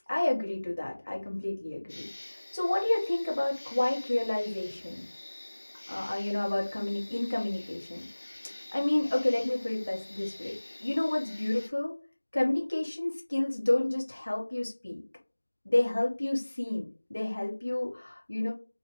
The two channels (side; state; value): both; inverted; correlation -1.00